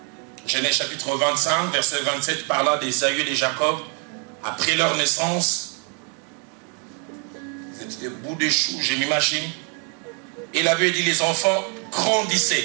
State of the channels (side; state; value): left; quieter; 35.6 dB